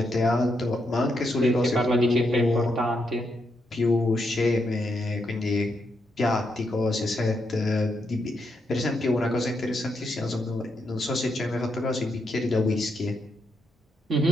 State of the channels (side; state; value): both; normal; correlation 0.80